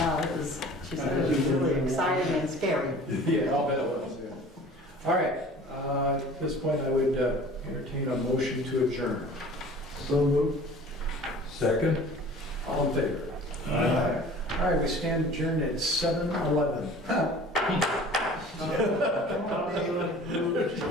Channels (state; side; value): normal; both; correlation 0.45